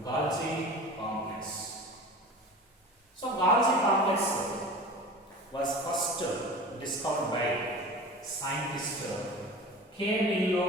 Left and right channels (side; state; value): both; normal; correlation 0.36